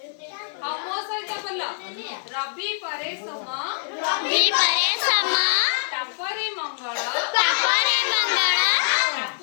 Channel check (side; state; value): right; silent; digital silence